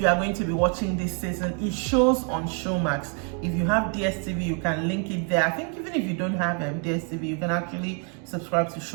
are going to be watching this season. It shows on Showmax. If you have DSTV, you can link it there. I think even if you don't have DSTV, you can actually subscribe to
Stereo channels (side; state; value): left; quieter; 39.4 dB